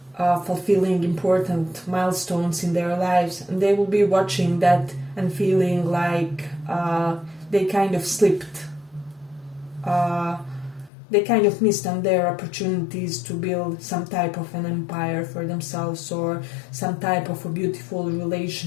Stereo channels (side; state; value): right; drops out; at 10.9 s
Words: fulfilling important milestones in their lives, and they will be watching that and feeling like they kind of slipped. They kind of missed on their opportunities to build some type of an empire for themselves, or some type of a beautiful